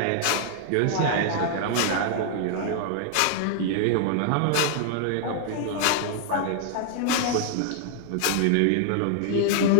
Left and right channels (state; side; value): different; both; correlation 0.00